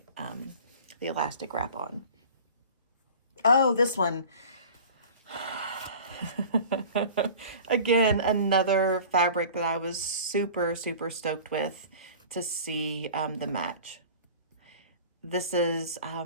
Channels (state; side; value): inverted; both; correlation -0.41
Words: the elastic wrap on. Oh, this one. Again, another fabric that I was super, super stoked with to see the match. This is